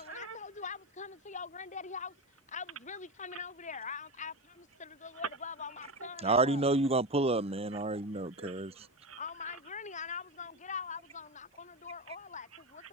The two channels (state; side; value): normal; both; correlation 0.17